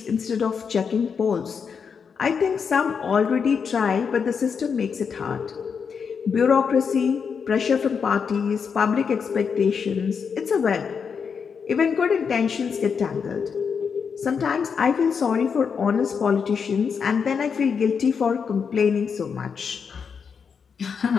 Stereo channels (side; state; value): right; quieter; 6.2 dB